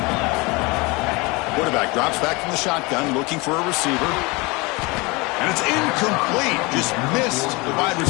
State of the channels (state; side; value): quieter; right; 25.6 dB